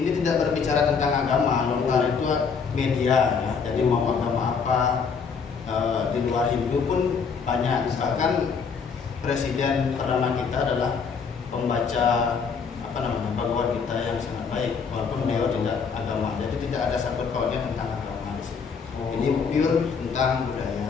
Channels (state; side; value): quieter; right; 5.8 dB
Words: tidak berbicara tentang agama, lontar itu media ya. Jadi mau agama apa di luar Hindu pun banyak. Bahkan presiden pertama kita adalah pembaca Bhagavad Gita yang sangat baik, walaupun beliau tidak agama. Jadi tidak ada sangkut pautnya tentang agama di sini. Ini pure tentang